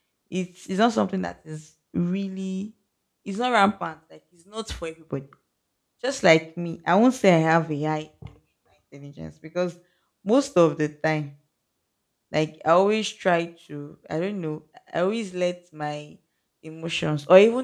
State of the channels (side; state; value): both; identical; correlation 1.00